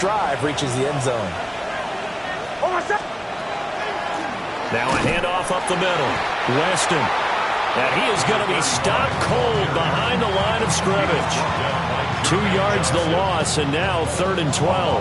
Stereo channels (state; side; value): identical; both; correlation 1.00